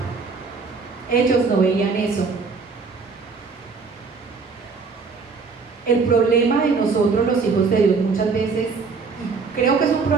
Ellos no veían eso. El problema de nosotros los hijos de Dios muchas veces, y creo que es un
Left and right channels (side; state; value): left; quieter; 4.8 dB